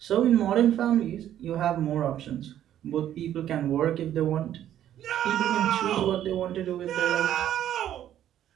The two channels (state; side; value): quieter; left; 11.3 dB